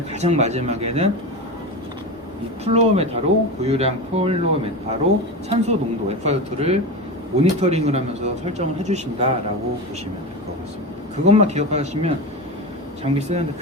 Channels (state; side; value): normal; both; correlation 0.23